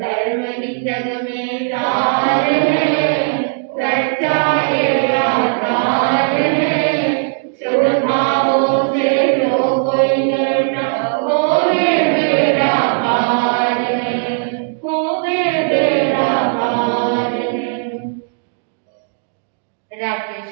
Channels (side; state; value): left; silent; digital silence